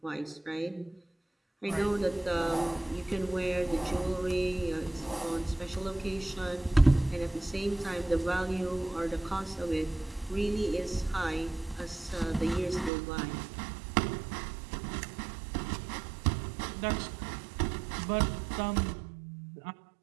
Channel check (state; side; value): drops out; left; at 12.9 s